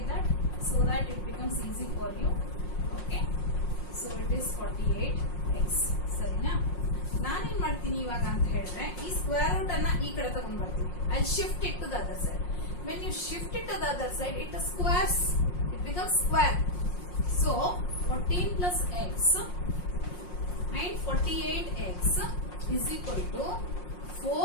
that, so that it becomes easy for you. Okay, so it is 48x. ಸರಿನಾ? ನಾನೇನ್ ಮಾಡ್ತೀನಿ ಇವಾಗ ಅಂತ ಹೇಳಿದ್ರೆ, ಈ square root ಅನ್ನ ಈ ಕಡೆ ತಗೊಂಡ್ ಬರ್ತೀನಿ. I shift it to the other side. When you shift it to the other side, it squares, it becomes square. So 14 plus x and 48x is equal to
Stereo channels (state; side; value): late; right; 5.6 ms